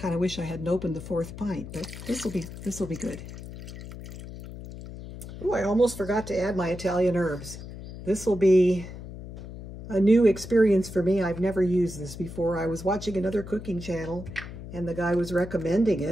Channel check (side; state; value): left; noise; hum, 12 dB below the sound